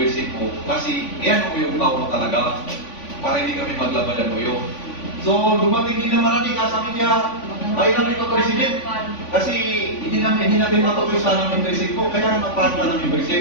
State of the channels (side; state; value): right; late; 3.5 ms